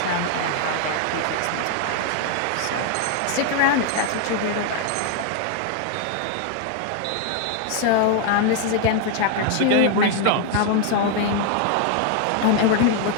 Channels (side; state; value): both; different; correlation 0.00